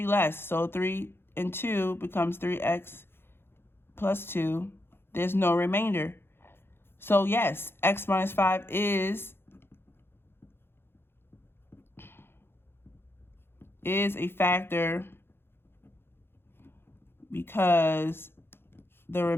less. So 3 and 2 becomes 3x plus 2. There's no remainder. So yes, x minus 5 is a factor because the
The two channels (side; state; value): right; late; 0.11 ms